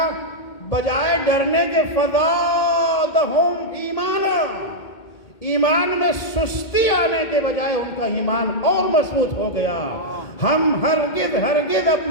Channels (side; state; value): right; late; 2.1 ms